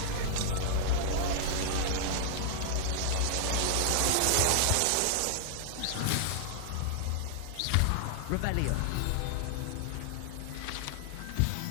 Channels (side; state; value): both; different; correlation -0.01